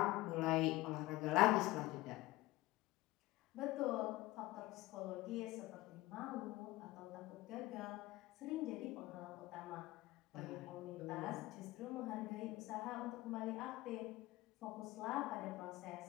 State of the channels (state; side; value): quieter; right; 18.8 dB